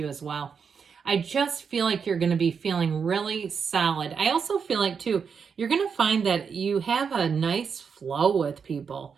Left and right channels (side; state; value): left; quieter; 6.2 dB